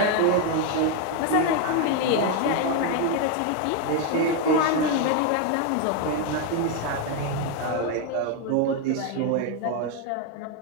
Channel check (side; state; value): both; different; correlation 0.01